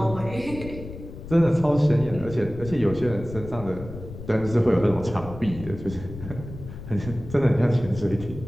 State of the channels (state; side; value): noise; left; rumble, 12 dB below the sound